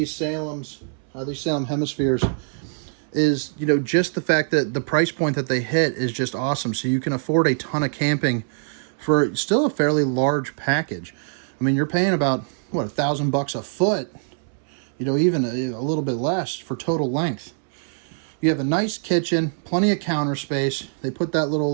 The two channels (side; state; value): left; silent; 63 dB below the other